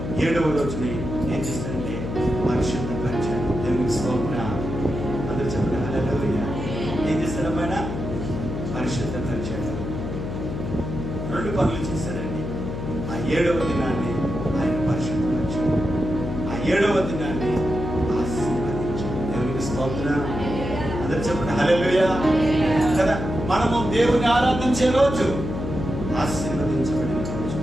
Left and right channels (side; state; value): left; noise; hum, 5 dB below the sound